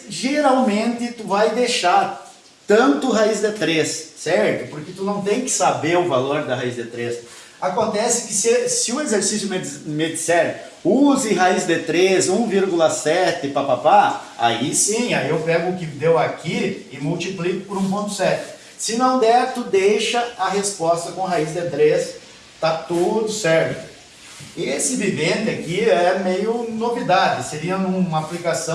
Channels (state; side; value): identical; both; correlation 1.00